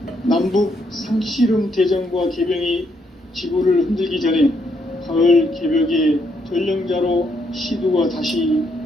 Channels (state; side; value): normal; both; correlation 0.75